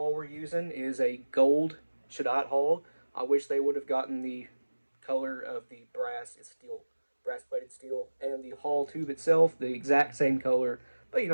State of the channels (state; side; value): inverted; both; correlation -1.00